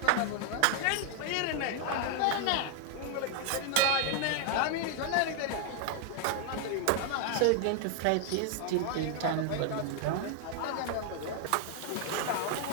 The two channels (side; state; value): both; different; correlation 0.00